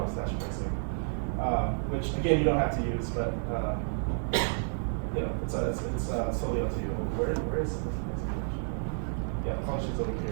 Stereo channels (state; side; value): silent; left; 57 dB below the other